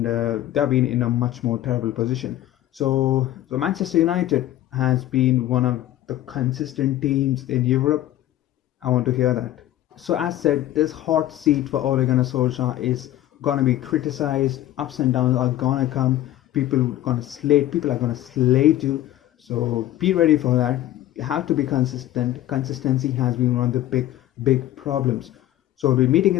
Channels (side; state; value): right; quieter; 13.7 dB